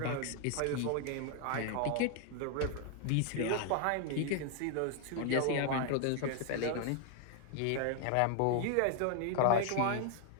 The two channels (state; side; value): different; both; correlation 0.00